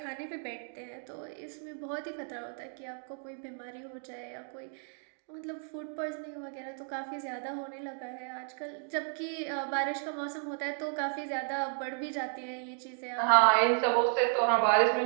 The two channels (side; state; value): left; silent; 56 dB below the other